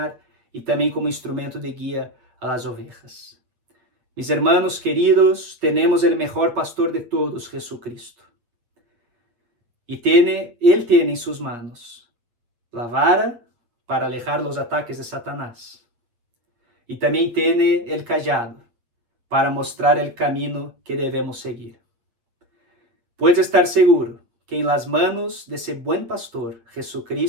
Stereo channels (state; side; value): late; left; 8.6 ms